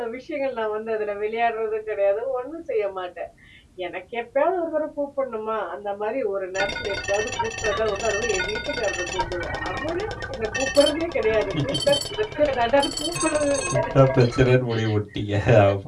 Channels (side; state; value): both; identical; correlation 1.00